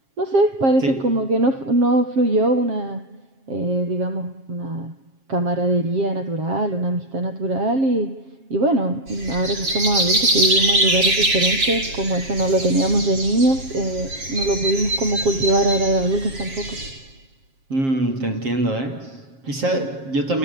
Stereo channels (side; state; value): left; late; 7.5 ms